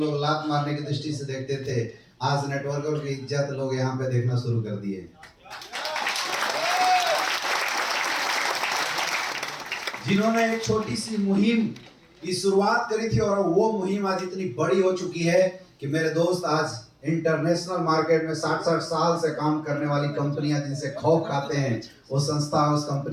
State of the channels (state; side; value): identical; both; correlation 1.00